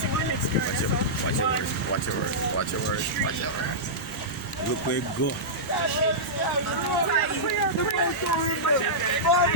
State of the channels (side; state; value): both; normal; correlation -0.13